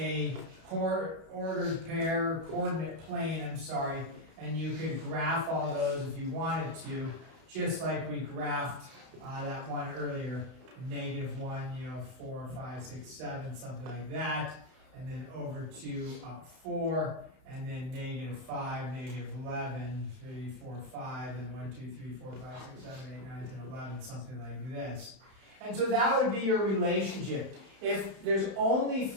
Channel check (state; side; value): late; left; 31 ms